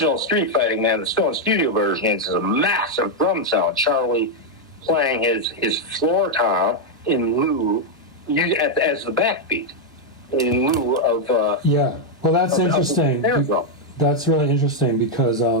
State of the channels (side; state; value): both; normal; correlation 0.00